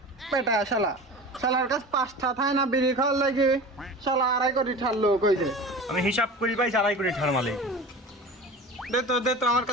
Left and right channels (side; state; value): both; normal; correlation 0.34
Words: বেটা শালার কাছে 5টা থায় না বিড়ি খাওয়ার লাগে শালা 2.5 কোটি ঠারলো কইছে। আমি হিসাব করি পাইছি 2.5 কোটি টাকার মালিক। দে তো আমার